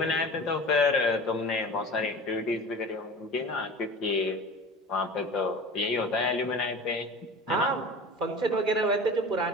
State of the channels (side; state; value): both; normal; correlation 0.36